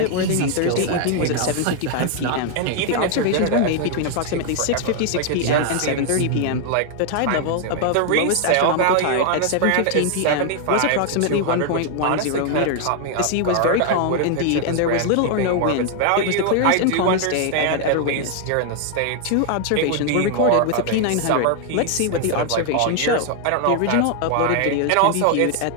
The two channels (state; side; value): different; both; correlation 0.00